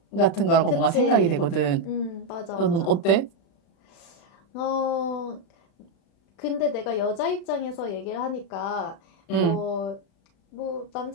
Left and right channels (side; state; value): right; late; 36 ms